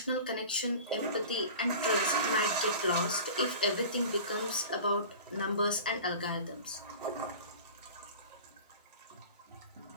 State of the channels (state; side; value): inverted; both; correlation -0.38